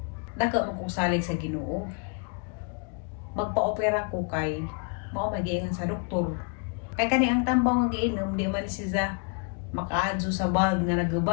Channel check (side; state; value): right; quieter; 36.8 dB